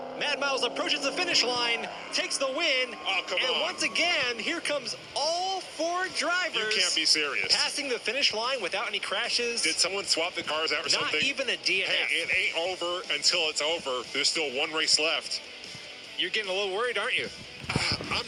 Mad Miles approaches the finish line, takes the win. Oh, come and on. once again, here comes all 4 drivers. You can't be serious. Passing the finish line without any crashes. Did someone swap the cars out or Not something? Not even a DNF. Hey, it ain't over until it's over. There's still 1 race left. You're getting a little worried, aren't you? I'm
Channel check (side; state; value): both; identical; correlation 1.00